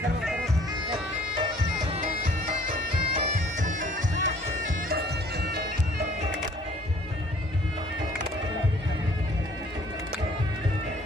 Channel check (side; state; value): both; normal; correlation 0.57